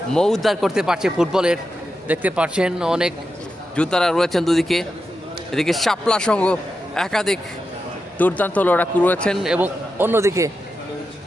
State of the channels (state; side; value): normal; both; correlation 0.89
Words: মৌদ্ধার করতে পারছে ফুটবলের দেখতে পাচ্ছেন। অনেক যোদ্ধারা রয়েছেন দুদিকে, এদিকে শাপলা সংঘ একাধিক দুর্দান্ত লড়াকু রয়েছেন এবং অন্যদিকে